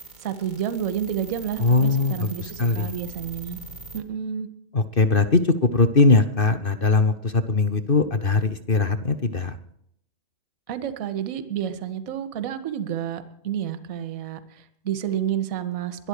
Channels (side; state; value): right; late; 2.6 ms